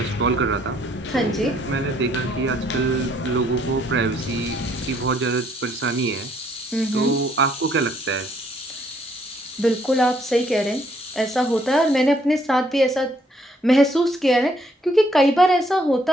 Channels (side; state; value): both; normal; correlation 0.67